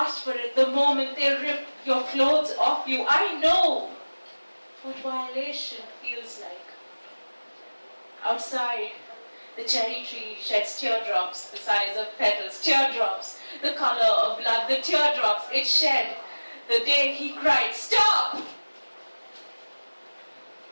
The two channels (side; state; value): both; inverted; correlation -1.00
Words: for it the moment they rip your clothes off you. I know what violation feels like." Outside, the cherry tree sheds teardrops the size of petals, teardrops the color of blood, the teardrops it shed the day he cried, "Stop!"